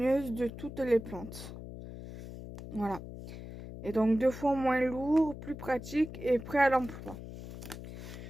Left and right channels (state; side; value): noise; left; hum, 11 dB below the sound